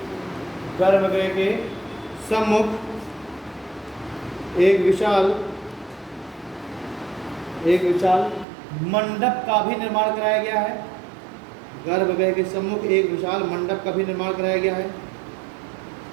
गर्भगृह के सम्मुख एक विशाल मंडप का भी निर्माण कराया गया है। गर्भगृह के सम्मुख एक विशाल मंडप का भी निर्माण कराया गया है।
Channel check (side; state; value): left; drops out; at 8.5 s